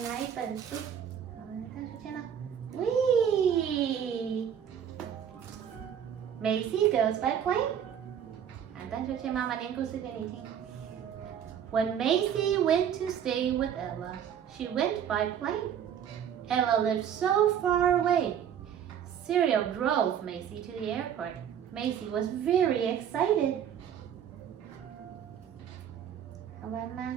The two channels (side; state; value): left; quieter; 8.9 dB